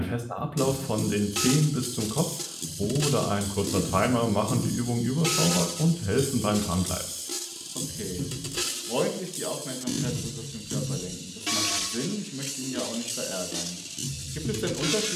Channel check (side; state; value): both; identical; correlation 1.00